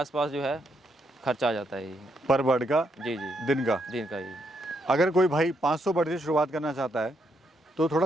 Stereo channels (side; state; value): both; normal; correlation 0.77